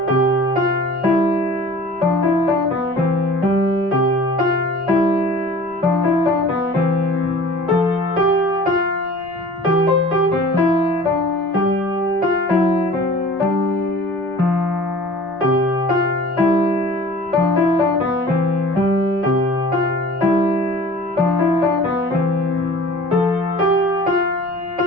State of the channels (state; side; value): noise; right; rumble, 27 dB below the sound